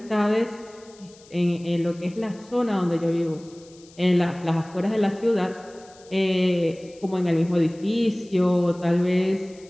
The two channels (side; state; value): left; noise; hiss, 26 dB below the sound